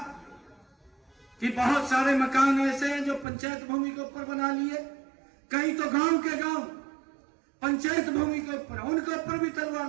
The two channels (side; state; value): left; drops out; at 3.2 s